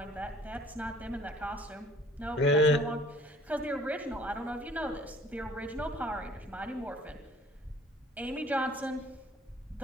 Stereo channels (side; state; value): both; normal; correlation 0.53